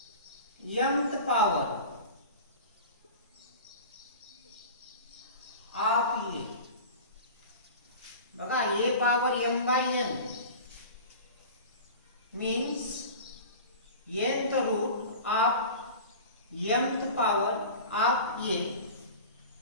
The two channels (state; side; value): inverted; both; correlation -0.36